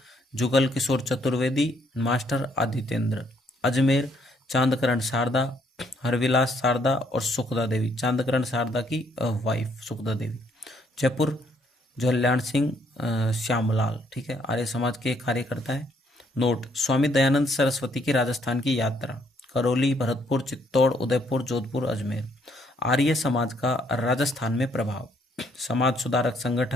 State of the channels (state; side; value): normal; both; correlation 0.69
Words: जुगल किशोर चतुर्वेदी, मास्टर आदित्येंद्र, अजमेर चांदकरण शारदा, हरविलास शारदा और सुखदा देवी, चांदकरण शारदा की वाइफ सुखदा देवी, जयपुर जल्याण सिंह श्यामलाल। ठीक है, आर्य समाज के कार्यकर्ता है। नोट, स्वामी दयानंद सरस्वती की राजस्थान की यात्रा, करौली, भरतपुर, चित्तौड़, उदयपुर, जोधपुर, अजमेर। आर्य समाज का राजस्थान में प्रभाव, समाज सुधारक